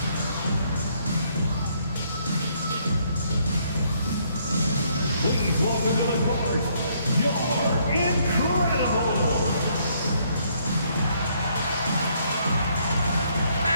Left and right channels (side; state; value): both; inverted; correlation -0.69